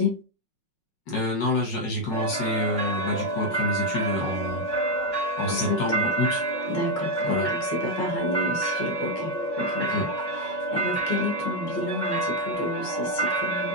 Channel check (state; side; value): late; right; 5.5 ms